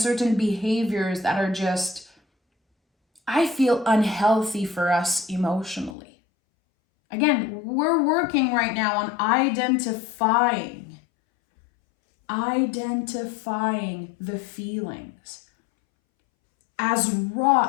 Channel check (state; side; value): drops out; right; at 6.0 s